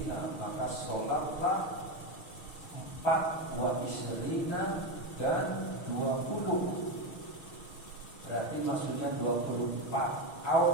maka sholatlah 4 wa isyrina dan 20. Berarti maksudnya 24.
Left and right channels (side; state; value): right; late; 6.3 ms